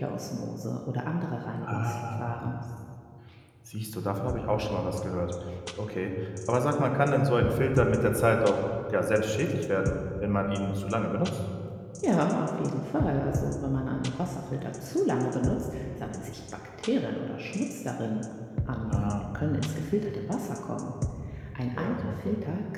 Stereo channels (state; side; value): identical; both; correlation 1.00